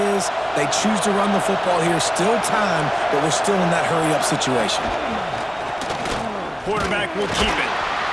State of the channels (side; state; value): both; identical; correlation 1.00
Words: is, they choose to run the football here. Still time, but we're still in that hurry-up situation. Quarterback will keep it.